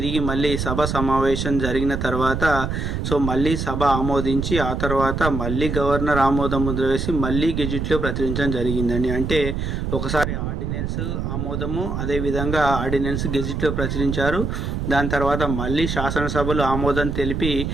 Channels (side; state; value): right; noise; rumble, 2 dB below the sound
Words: మళ్ళీ సభ సమావేశం జరిగిన తర్వాత సో మళ్ళీ సభ ఆమోదించి ఆ తర్వాత మళ్ళీ గవర్నర్ ఆమోదం ముద్ర వేసి మళ్ళీ గెజిట్లో ప్రచురించడం జరిగిందండి. అంటే ఒకసారి ఆర్డినెన్స్ ఆమోదము, అదేవిధంగా ఆర్డినెన్స్ గెజిట్లో ప్రచురించారు. దాని తర్వాత మళ్ళీ శాసనసభలు ఆమోదం తెలిపి